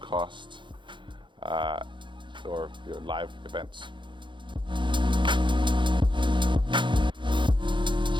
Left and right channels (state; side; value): late; left; 0.23 ms